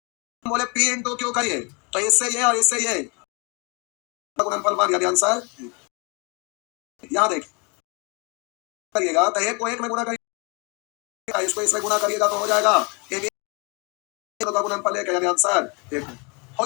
बोले पी इंटू क्यू करिए तो इससे ये और इससे ये गुणनफल 1 यानी आंसर। यहाँ देखिए करिएगा तो एक को एक में गुणा करिएगा, इसको इसमें गुणा करिएगा तो हो जाएगा ए बी का गुणनफल 1 यानी आंसर 1 हो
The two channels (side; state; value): right; quieter; 31.3 dB